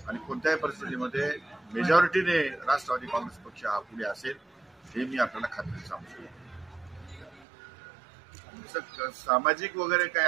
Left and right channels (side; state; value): left; drops out; at 7.5 s